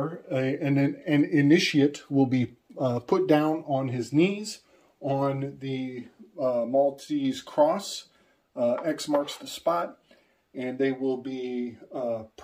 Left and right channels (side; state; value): both; identical; correlation 1.00